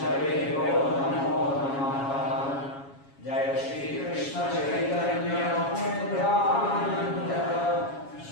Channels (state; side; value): late; right; 7.2 ms